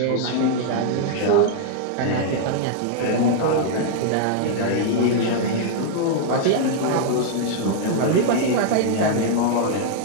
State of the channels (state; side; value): different; both; correlation -0.01